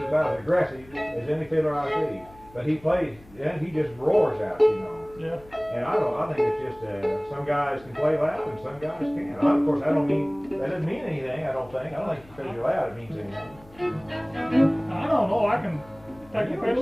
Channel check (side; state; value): left; noise; hum, 24 dB below the sound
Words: as aggressive as any fiddler I see. But he plays, and he just roars out, you know. Yeah. And I think it's just, some guys can play loud and some guys can't. Of course, that doesn't mean anything, I don't think. I don't think because you're loud it means anything. I don't know. I can take You a know, it